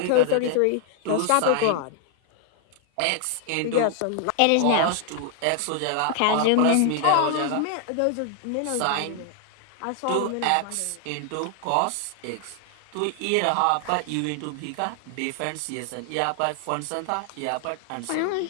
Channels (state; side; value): different; both; correlation 0.00